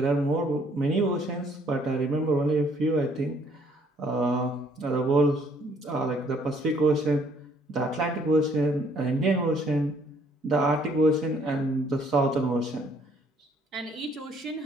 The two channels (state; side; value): normal; both; correlation 0.63